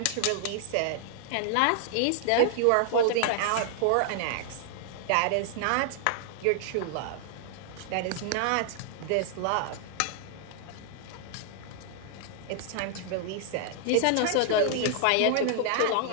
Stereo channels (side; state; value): both; different; correlation -0.01